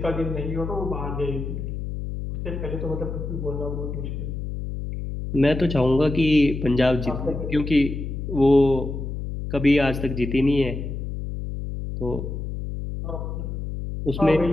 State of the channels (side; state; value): left; noise; hum, 5 dB below the sound